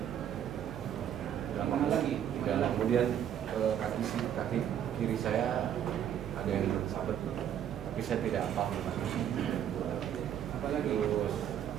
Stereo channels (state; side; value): quieter; left; 9.8 dB